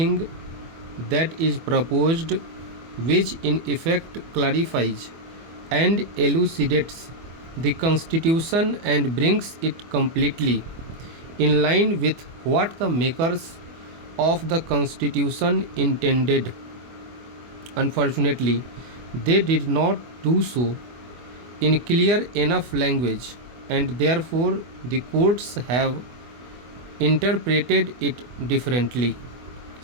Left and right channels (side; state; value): left; late; 24 ms